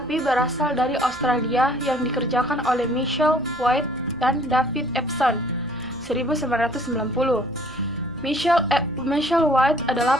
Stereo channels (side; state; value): right; noise; hum, 22 dB below the sound